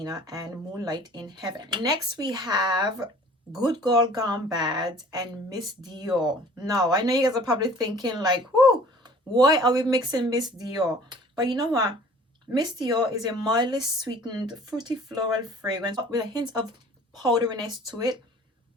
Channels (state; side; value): normal; both; correlation 0.49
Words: and Moonlight in Heaven. Next we have Good Girl Gone Bad and Miss Dior. Now I know you guys are probably thinking like, whoo, why are we mixing Miss Dior? But you know what, Miss Dior is a mildly sweetened fruity floral fragrance with a hint of powderiness to it.